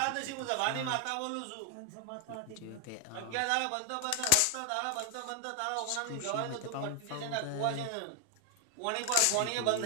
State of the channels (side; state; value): both; different; correlation 0.00